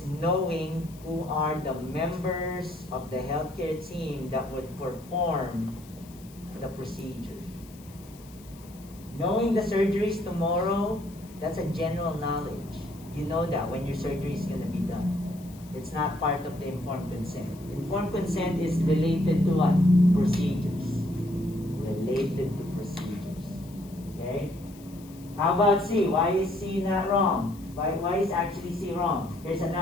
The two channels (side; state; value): left; noise; hiss, 23 dB below the sound